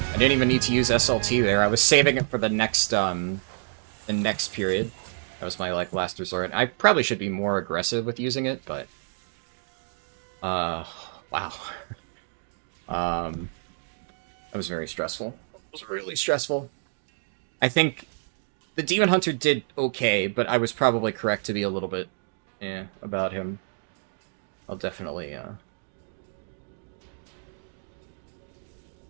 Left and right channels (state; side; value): silent; left; digital silence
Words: didn't even need to use SLT there. I was saving it for the next period. That was my, like, last resort. I probably should be more aggressive with using it, but... wow. That was very stressful. It was really stressful. I think the Demon Hunter did okay, but I was probably correct to be a little bit, about him. I'll definitely, yeah.